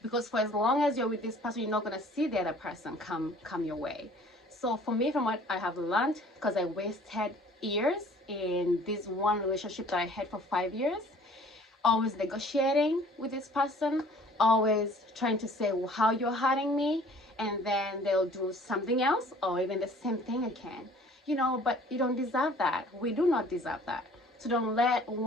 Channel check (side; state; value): both; normal; correlation 0.52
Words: Because for as long as you're with this person, you're not going to see the other person come your way. So for me, from what I have learned, because I wasted years in this one relationship that I had for 5 years, always negotiating with this person, always trying to say how you're hurting me, and then they'll do something else or even the same thing again. But you don't deserve that. We do not deserve that. So don't let